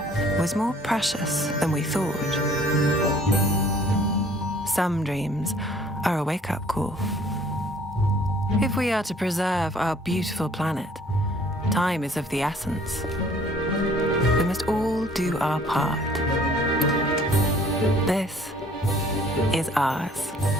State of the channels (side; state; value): both; normal; correlation 0.56